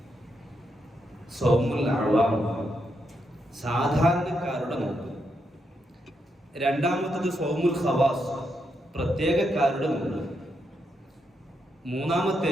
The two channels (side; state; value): both; normal; correlation 0.81